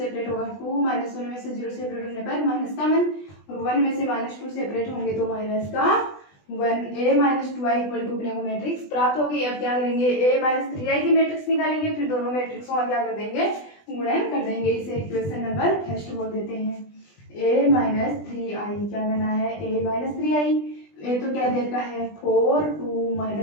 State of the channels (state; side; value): late; right; 20 ms